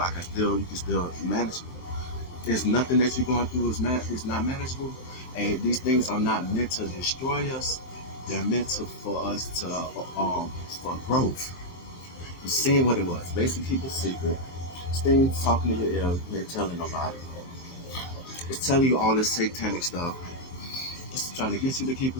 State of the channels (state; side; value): late; right; 22 ms